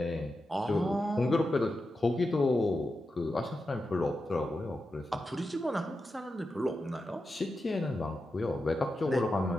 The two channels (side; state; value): both; normal; correlation 0.89